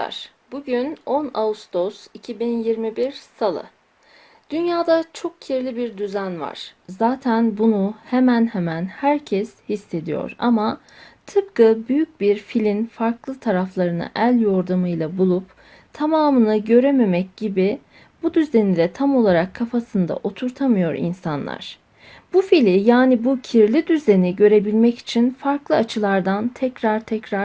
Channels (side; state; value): both; identical; correlation 1.00